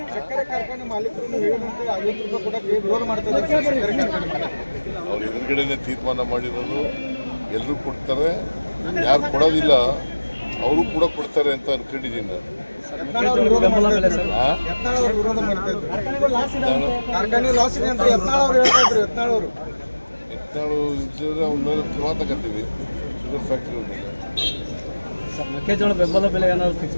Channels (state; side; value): inverted; both; correlation -1.00